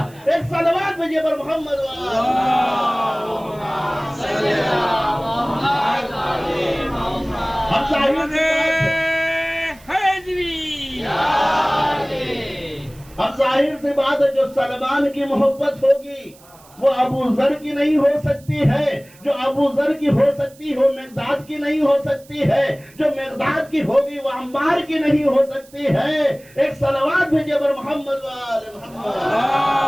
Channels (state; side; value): noise; right; hiss, 26 dB below the sound